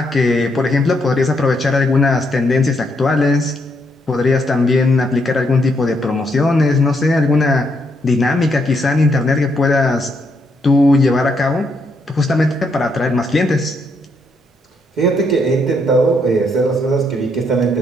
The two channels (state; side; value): normal; both; correlation 0.76